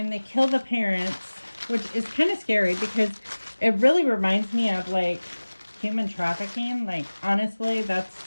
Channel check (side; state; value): both; inverted; correlation -1.00